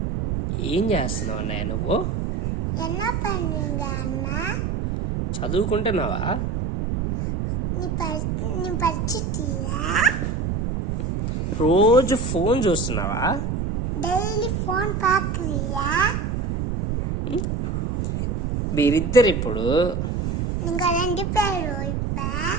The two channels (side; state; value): right; noise; rumble, 1 dB below the sound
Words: ఏం చేస్తున్నావు అన్నయ్య నువ్వు? చదువుకుంటున్నావా? రోజు ఫోన్ చూస్తున్నావా? డైలీ ఫోన్ పాకురియా? మీరిద్దరు ఇప్పుడు ఇంకా రెండు పేరు